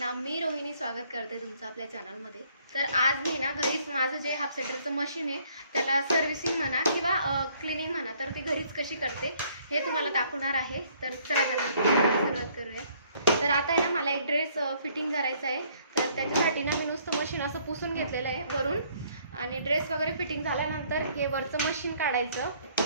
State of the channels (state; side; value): inverted; both; correlation -0.63